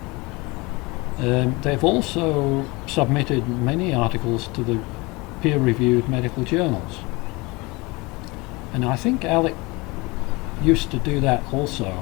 They've also submitted many articles to the peer-reviewed medical journals, and I think Alec used to do that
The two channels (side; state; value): right; quieter; 24.7 dB